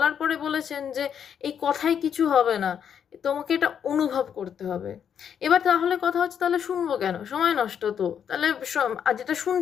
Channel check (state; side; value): quieter; right; 8.2 dB